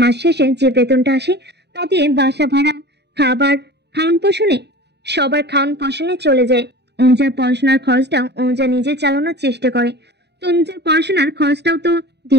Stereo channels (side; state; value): left; late; 0.49 ms